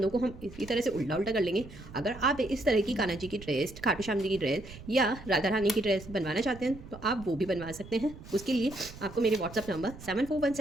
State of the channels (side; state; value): right; noise; rumble, 16 dB below the sound